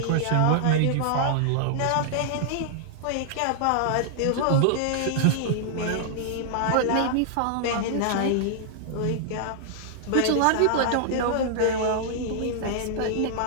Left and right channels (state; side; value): different; both; correlation -0.01